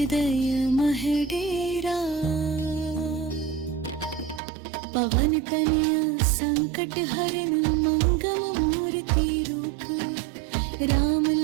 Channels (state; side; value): drops out; left; at 4.4 s